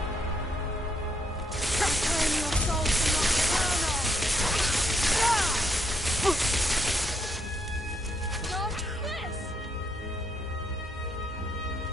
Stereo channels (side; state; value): both; normal; correlation 0.75